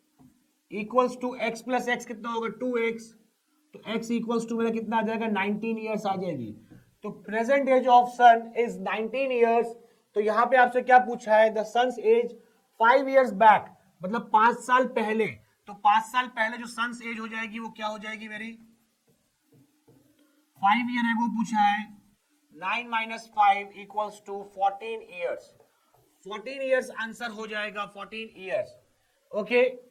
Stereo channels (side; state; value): both; identical; correlation 1.00